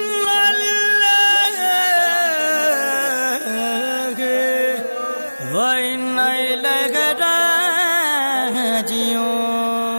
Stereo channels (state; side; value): inverted; both; correlation -1.00